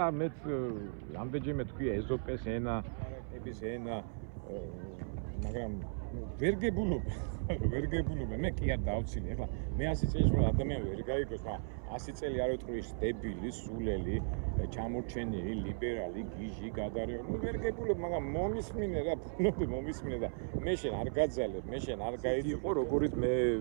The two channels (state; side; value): silent; left; 53 dB below the other